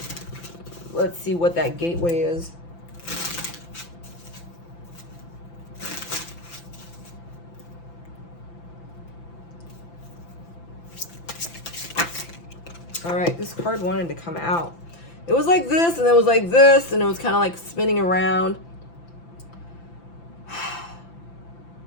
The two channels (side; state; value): right; late; 5.9 ms